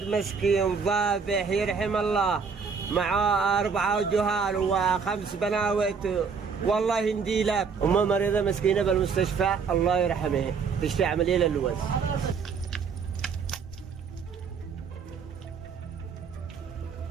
مسكين ذابح يرحم الله معاه 4 جهال و5 بناوت. والله يهدي لك. امه مريضه مسكينه بالمستشفى الله يرحمها تشفي عمليه للوز.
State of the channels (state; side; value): quieter; left; 5.7 dB